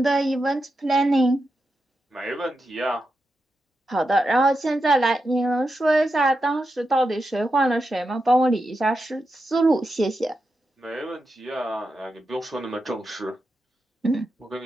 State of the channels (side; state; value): both; normal; correlation 0.88